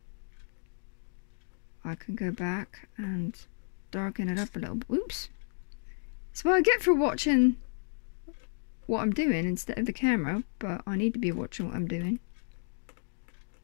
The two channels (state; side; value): silent; right; digital silence